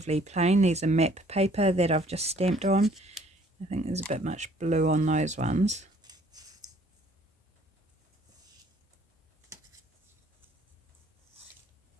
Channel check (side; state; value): both; normal; correlation 0.59